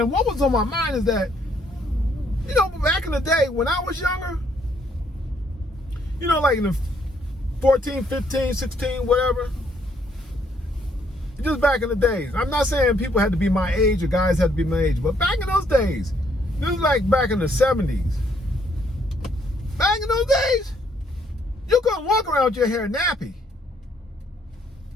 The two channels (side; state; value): both; normal; correlation 0.69